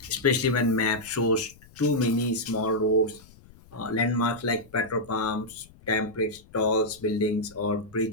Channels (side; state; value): left; noise; rumble, 24 dB below the sound